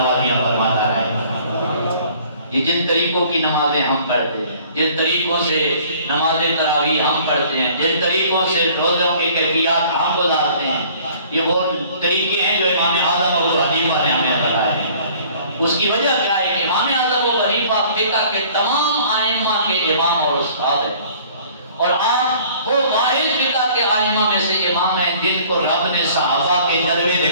فرماتا ہے۔ یہ جن طریقوں کی نمازیں ہم پڑھتے ہیں، جن طریقوں سے نماز تراویح ہم پڑھتے ہیں، جن طریقوں سے روزوں کی کیفیات ہم گزارتے ہیں، یہ وہ طریقے ہیں جو امام اعظم ابو حنیفہ نے ہمیں بتائے ہیں۔ اس کی وجہ کیا ہے کہ امام اعظم ابو حنیفہ فقہ کے تمام ائمہ کے امام اور استاد ہیں، اور آپ وہ واحد فقہ کے ائمہ میں سے امام ہیں جن کو رب نے صحابہ کے جلوے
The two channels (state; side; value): inverted; both; correlation -0.53